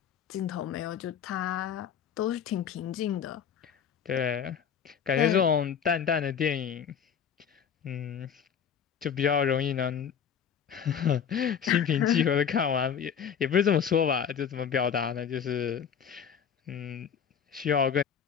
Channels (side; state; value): right; quieter; 7.7 dB